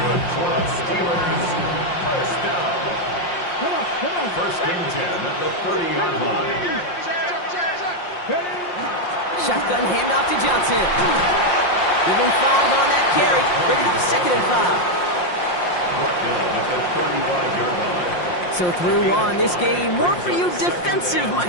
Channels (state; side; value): late; right; 5.7 ms